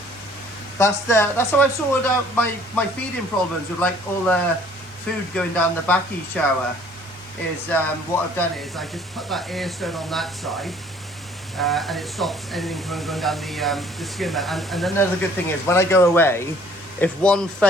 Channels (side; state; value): both; normal; correlation 0.56